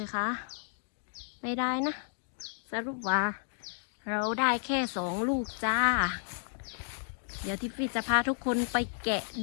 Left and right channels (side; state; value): right; silent; digital silence